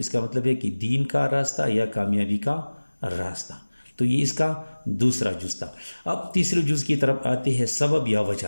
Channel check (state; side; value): inverted; both; correlation -1.00